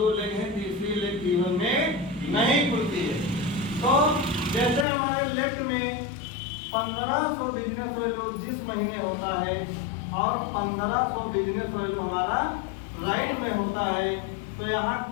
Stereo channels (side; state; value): right; drops out; at 4.9 s